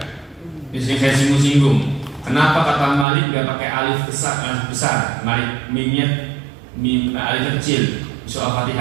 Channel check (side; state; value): left; drops out; at 3.1 s